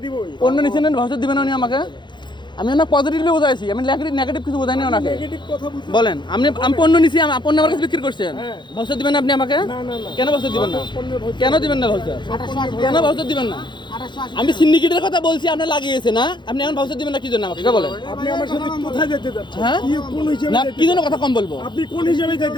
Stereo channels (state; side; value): late; right; 0.22 ms